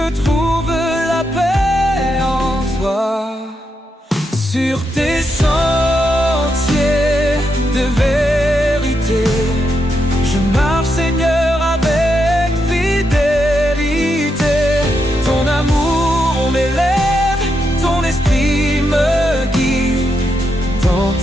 trouve la paix en toi. Sur tes sentiers de vérité, je marche, Seigneur, avec fidélité. Ton amour m'élève, ton esprit me guide. Dans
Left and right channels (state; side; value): normal; both; correlation 0.83